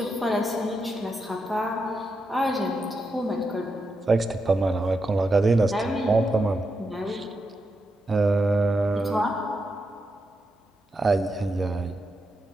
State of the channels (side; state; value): both; normal; correlation 0.85